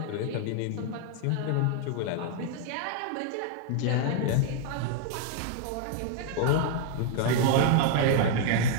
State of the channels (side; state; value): both; different; correlation 0.00